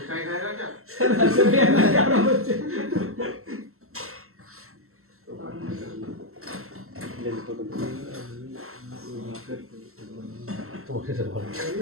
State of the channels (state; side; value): late; left; 0.63 ms